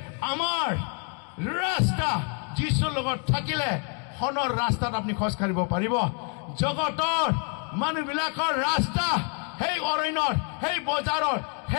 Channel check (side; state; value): right; quieter; 38.3 dB